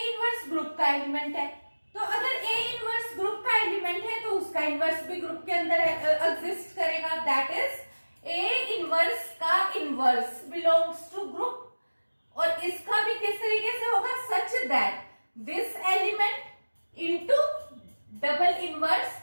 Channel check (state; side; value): inverted; both; correlation -1.00